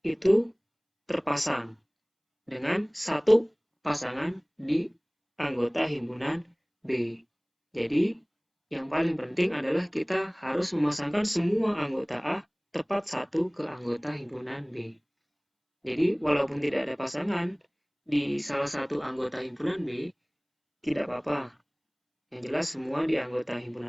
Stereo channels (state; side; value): identical; both; correlation 1.00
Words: itu terpasang dengan satu pasangan di anggota himpunan B. Jadi, yang paling penting adalah kita harus memasangkan semua anggota A tepat satu ke anggota himpunan B. Jadi, walaupun tidak ada pasangan di salah satu anggota himpunan B, tidak apa-apa. Yang jelas semua di anggota